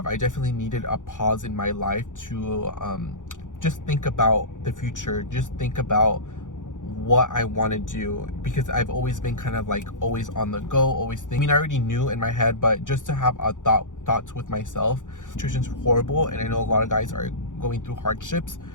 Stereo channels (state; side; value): late; right; 0.87 ms